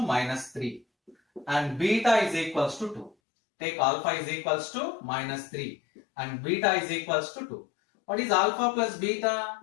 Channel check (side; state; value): right; drops out; at 3.2 s